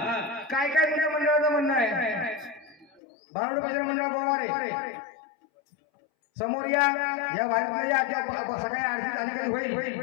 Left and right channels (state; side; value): drops out; right; at 3.0 s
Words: काय काय तुझ्या मंडळाचं म्हणणं आहे भारुड भजन मंडळ गोवारे समोर या वारीतल्या या सकाळी आरती झाली कधी